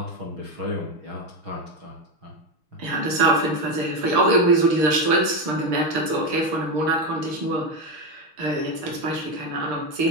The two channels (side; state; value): left; late; 6.3 ms